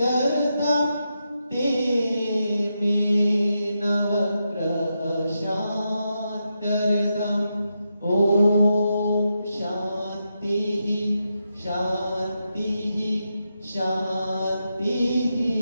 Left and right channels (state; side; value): inverted; both; correlation -0.85